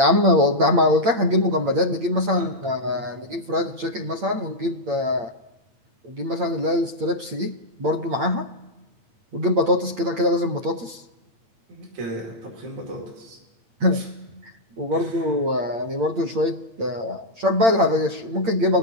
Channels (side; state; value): left; late; 8.8 ms